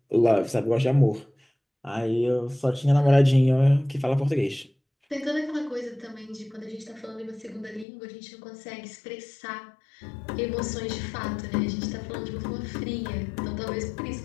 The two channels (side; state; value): right; drops out; at 7.9 s